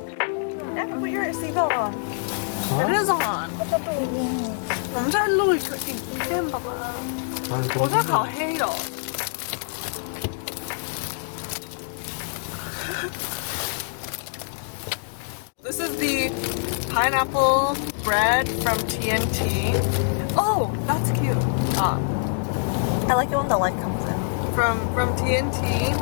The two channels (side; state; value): right; silent; digital silence